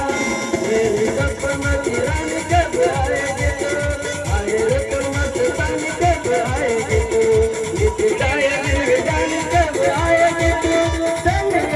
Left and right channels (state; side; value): identical; both; correlation 1.00